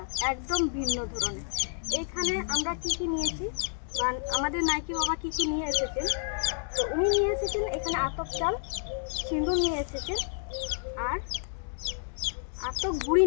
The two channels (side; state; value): right; silent; digital silence